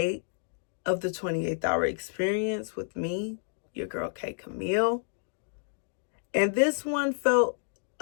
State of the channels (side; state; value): right; silent; digital silence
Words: of the 28th Hour Experience with me, your girl K.Camille. And this one felt